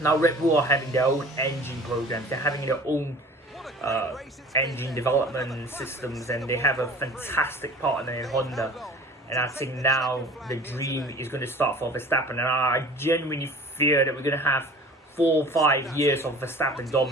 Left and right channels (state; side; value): normal; both; correlation 0.44